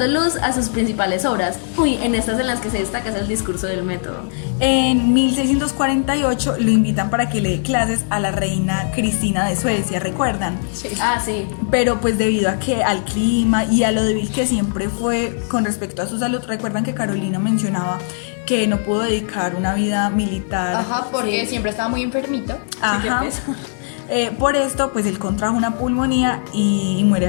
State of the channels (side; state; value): right; silent; digital silence